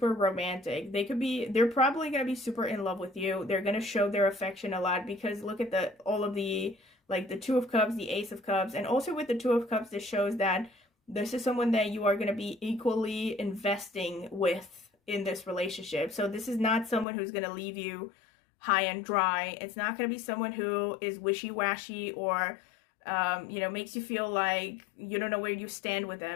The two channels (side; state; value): right; drops out; at 17.1 s